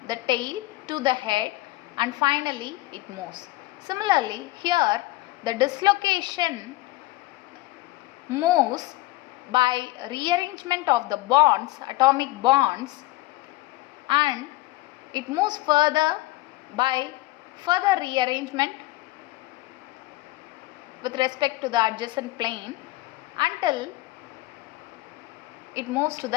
the tail to the head and finally it moves. Similarly, here the dislocation moves by rearrangement of the bonds, atomic bonds, and it moves further by further rearrangement with respect to the adjacent plane until it moves to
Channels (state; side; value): quieter; right; 19.2 dB